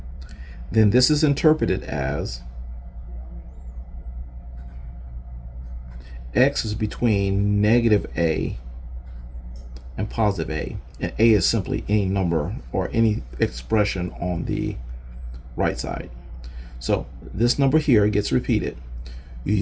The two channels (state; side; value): identical; both; correlation 1.00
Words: then this is interpreted as x is between negative a and positive a, and a is simply any number or any expression on the right side. So this number here gets repeated. You